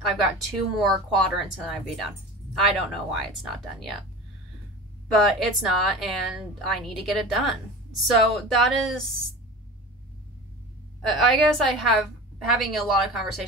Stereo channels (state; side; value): normal; both; correlation 0.34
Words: I've got 2 more quadrants and then I'd be done. I don't know why it's not done yet, but it's not, and I need to get it done. So that is, I guess having a lot of